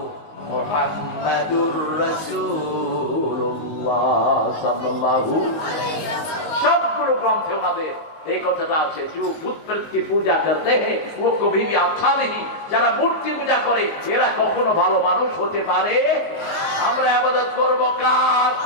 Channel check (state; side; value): late; right; 19 ms